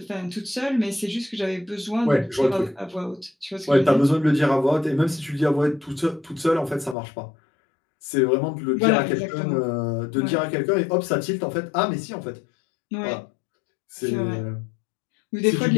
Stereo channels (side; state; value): right; drops out; at 7.0 s